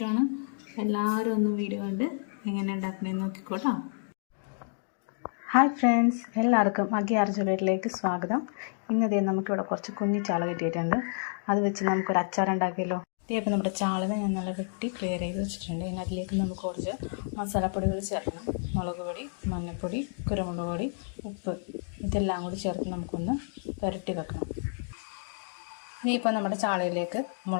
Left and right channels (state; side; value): silent; right; digital silence